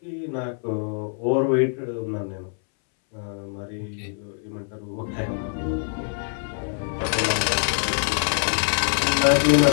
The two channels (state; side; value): silent; right; 62 dB below the other